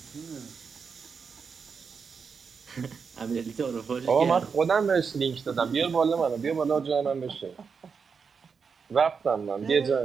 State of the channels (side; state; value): left; quieter; 5.8 dB